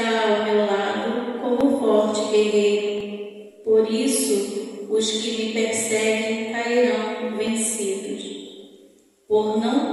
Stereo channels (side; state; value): both; identical; correlation 1.00